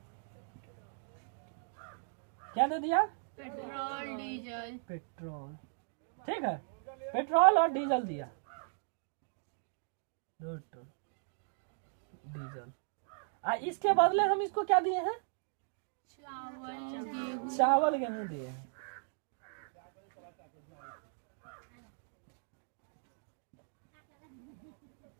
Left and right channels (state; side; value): silent; left; digital silence